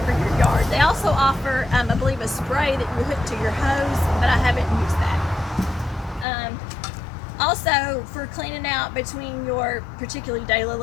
your yard. They also offer, I believe, a spray that you hook to your hose, but I haven't used that. Also, for cleaning out between your particularly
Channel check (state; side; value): drops out; right; at 6.2 s